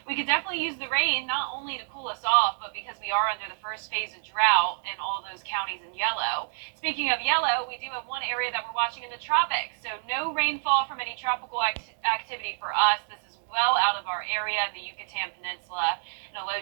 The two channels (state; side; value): silent; left; digital silence